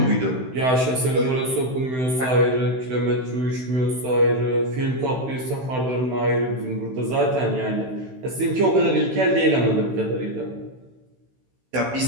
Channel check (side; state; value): left; late; 16 ms